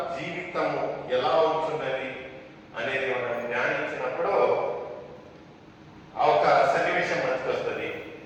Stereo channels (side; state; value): both; identical; correlation 1.00